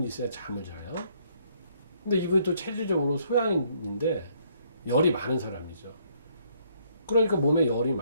있어야 잠을 자요. 근데 이분이 또 체질적으로 소양인데 열이 많은 사람이죠. 그러니까 몸에 열이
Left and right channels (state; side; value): inverted; both; correlation -0.68